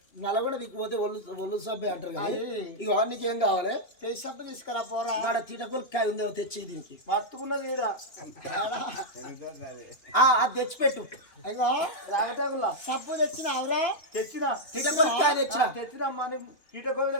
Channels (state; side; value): late; right; 2.9 ms